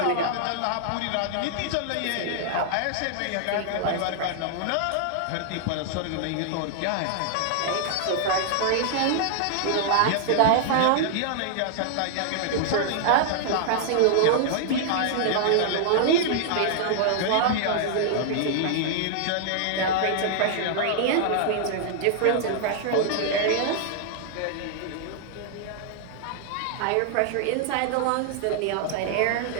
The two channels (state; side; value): different; both; correlation -0.01